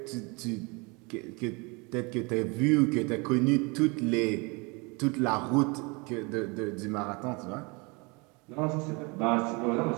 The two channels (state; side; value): quieter; left; 29.0 dB